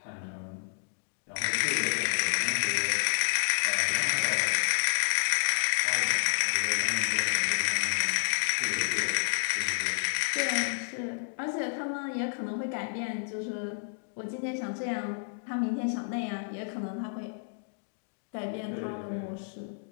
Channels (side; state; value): right; silent; digital silence